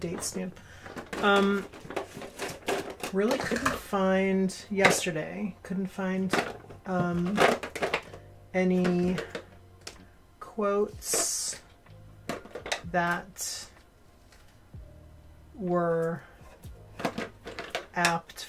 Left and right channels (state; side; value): identical; both; correlation 1.00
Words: stamp. Really couldn't find, yesterday, couldn't find any quotes that were apt